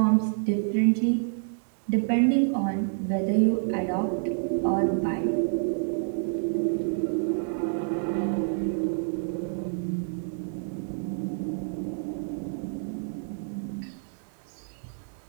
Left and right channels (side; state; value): left; silent; digital silence